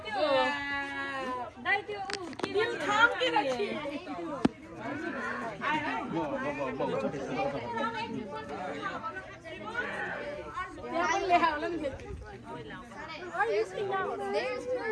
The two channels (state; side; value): identical; both; correlation 1.00